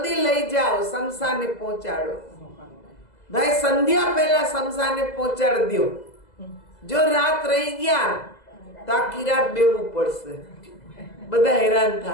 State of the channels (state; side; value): late; right; 2.0 ms